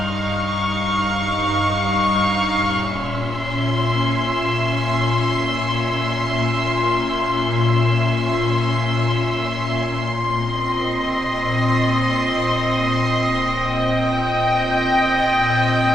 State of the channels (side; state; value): both; normal; correlation 0.81